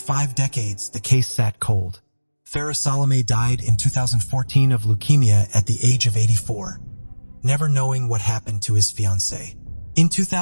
decades, the case sat cold. Farah Salome died in 2014 of leukemia at the age of 84, never knowing what happened to his fiancée. In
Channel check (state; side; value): inverted; both; correlation -1.00